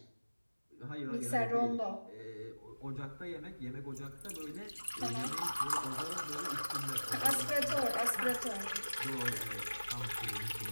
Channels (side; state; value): both; inverted; correlation -1.00